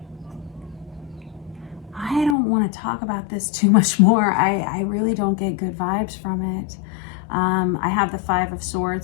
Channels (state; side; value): drops out; right; at 2.4 s